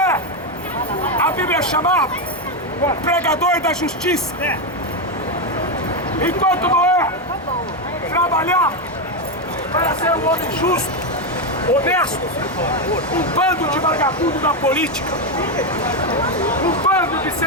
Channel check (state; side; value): normal; both; correlation 0.07